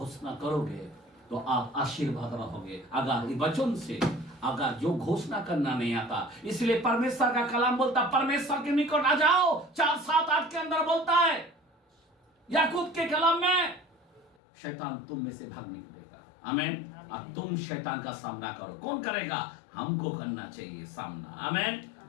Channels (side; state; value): right; drops out; at 14.3 s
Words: करोगे तो आप आशीर्वाद रहोगे। अगर ये वचन से अगर जो घोषणा करना नहीं आता, इसलिए परमेश्वर का कलाम बोलता, परमेश्वर के निकट आ जाओ। 4:7-8 के अंदर बोलता है याकूब के कलाम में, शैतान तुम में से भाग निकलेगा। आमीन। अब तुम शैतान का सामना करो। कौन करेगा? हमको करना चाहिए सामना। आमीन।